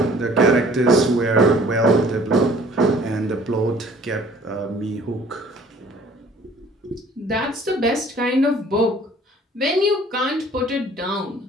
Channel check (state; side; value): normal; both; correlation 0.53